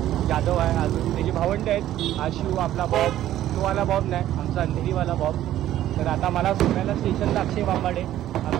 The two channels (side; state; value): left; quieter; 12.9 dB